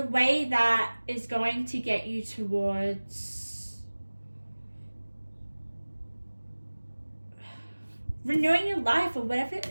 way that is going to get you towards renewing your life or whatever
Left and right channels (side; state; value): both; inverted; correlation -1.00